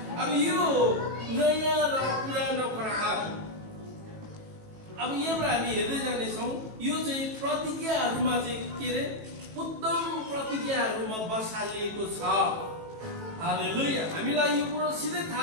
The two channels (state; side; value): late; left; 18 ms